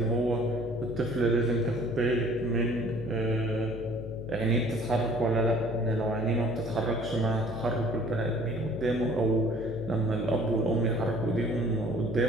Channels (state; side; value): noise; left; hum, 10 dB below the sound